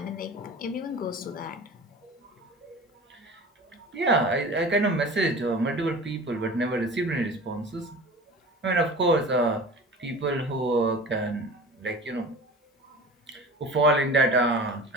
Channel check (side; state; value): both; normal; correlation 0.37